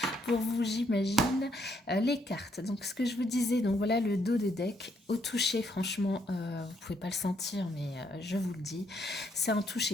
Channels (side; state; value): both; normal; correlation 0.73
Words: pour vous, j'imagine, les cartes. Donc, ce que je vous disais, donc voilà le dos de deck. Au toucher, franchement, vous pouvez pas le sentir, mais je vous le dis, c'est un